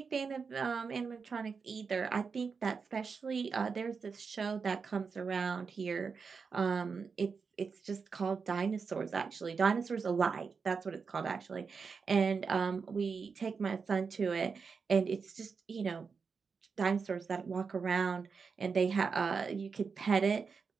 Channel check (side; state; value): left; quieter; 5.3 dB